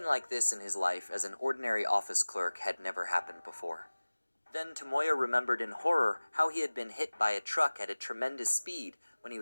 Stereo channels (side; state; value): both; inverted; correlation -1.00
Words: like this in his life as an ordinary office clerk had never happened before. Then Tomoya remembered in horror how he had been hit by a truck at a tremendous speed when he